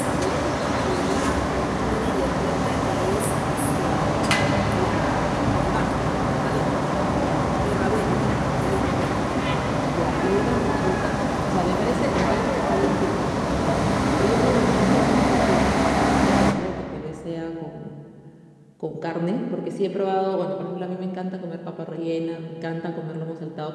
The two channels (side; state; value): both; identical; correlation 1.00